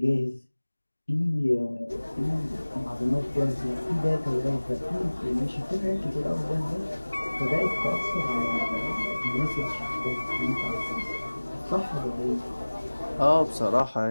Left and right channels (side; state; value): both; inverted; correlation -1.00